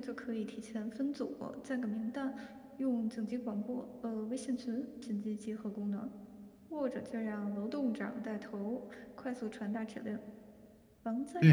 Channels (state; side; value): identical; both; correlation 1.00